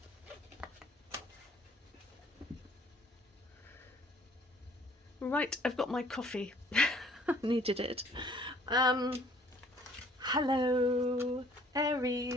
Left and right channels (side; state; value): both; normal; correlation 0.57